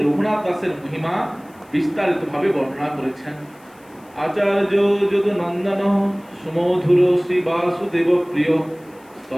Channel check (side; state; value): left; noise; hiss, 30 dB below the sound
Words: রঘুনাথ দাসের মহিমা বিস্তারিতভাবে বর্ণনা করেছেন। আচার্য যদুনন্দন সুমধুর শ্রী বাসুদেব প্রিয়